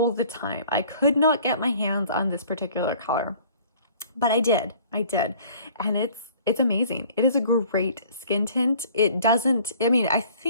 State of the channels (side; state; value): both; inverted; correlation -0.52